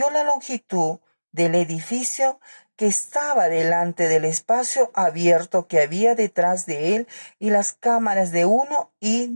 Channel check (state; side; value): inverted; both; correlation -1.00